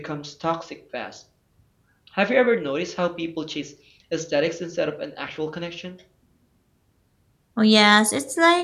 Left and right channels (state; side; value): identical; both; correlation 1.00